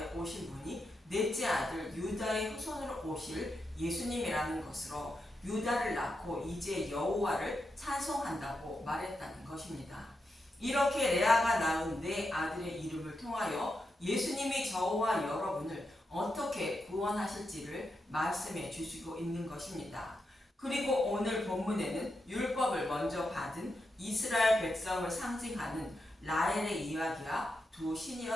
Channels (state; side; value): normal; both; correlation 0.86